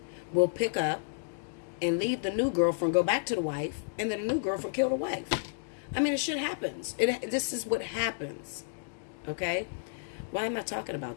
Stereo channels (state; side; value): silent; right; digital silence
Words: will pick up and leave the new girlfriend, go back to the wife, and then the new girlfriend kill the wife. I mean, it shit happens. This is what happens, okay? Why am I talking